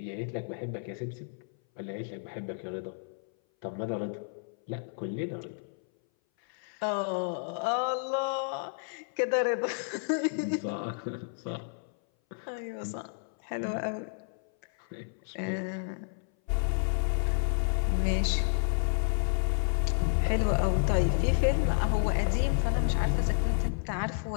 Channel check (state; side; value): silent; right; 57 dB below the other